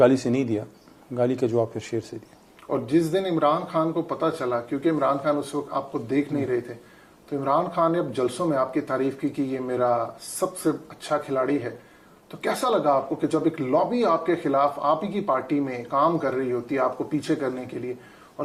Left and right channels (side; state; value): both; identical; correlation 1.00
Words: سے نہیں دیا، گالی کا جواب پھر شیر سے دیا. اور جس دن عمران خان کو پتہ چلا، کیونکہ عمران خان اس وقت آپ کو دیکھ نہیں رہے تھے، تو عمران خان نے اب جلسوں میں آپ کی تعریف کی کہ یہ میرا سب سے اچھا کھلاڑی ہے، تو کیسا لگا آپ کو کہ جب ایک لابی آپ کے خلاف آپ ہی کی پارٹی میں کام کر رہی ہوتی ہے آپ کو پیچھے کرنے کے لیے، اور